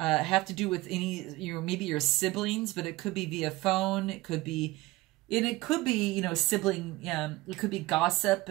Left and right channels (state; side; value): quieter; left; 19.7 dB